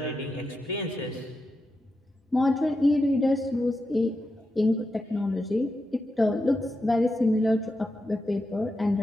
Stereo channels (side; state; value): both; normal; correlation 0.87